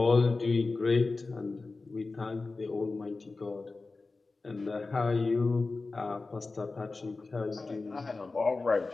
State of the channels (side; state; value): right; quieter; 3.7 dB